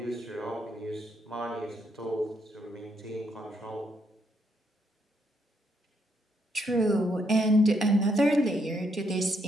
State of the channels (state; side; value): normal; both; correlation 0.75